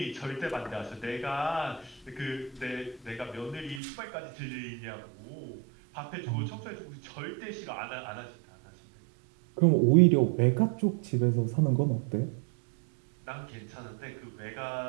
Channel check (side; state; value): left; drops out; at 3.8 s